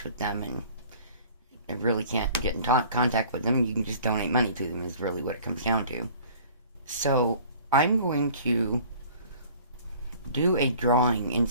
with them and I really can't get in contact with them. You can just donate money to them is really what it comes down to. So I'm going to do a drawing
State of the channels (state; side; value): inverted; both; correlation -0.49